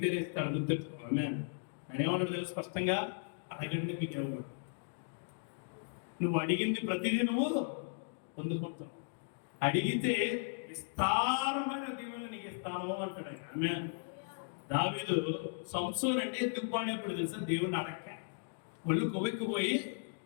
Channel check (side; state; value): right; silent; digital silence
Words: ఇస్తాడు. గుర్తుపెట్టుకో. నేనేమన్నా తెలుసు స్పష్టంగా, అడగండి మీకు ఇవ్వకూడదు. నువ్వు అడిగింది ప్రతిదీ నువ్వు పొందుకుంటావు. అడిగితే విస్తారమైన దీవెనలు నీకు ఇస్తాను అంటాడు. దావీదు సంసోన్ అంటే ఎందుకు పాడేప్పుడు తెలుసా? దేవుడిని అడగ ఒళ్ళు కొవ్వెక్కిపోయి